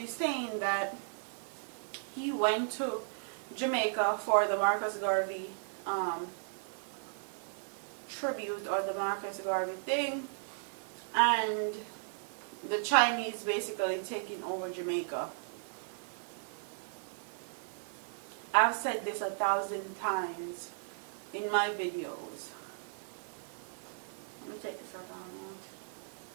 saying that he went to Jamaica for the Marcus Garvey tribute, or the Marcus Garvey thing, and the Chinese basically taking over Jamaica. I've said this 1,000 times in my videos. Let me take this out.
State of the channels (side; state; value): left; silent; 54 dB below the other